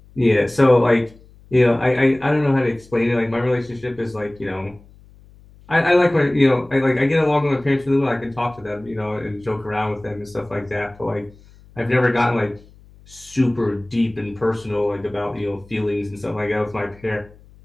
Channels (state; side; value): noise; left; hum, 25 dB below the sound